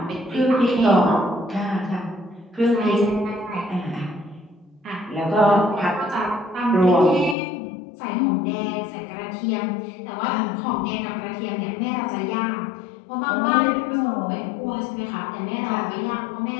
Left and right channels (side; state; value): right; drops out; at 7.4 s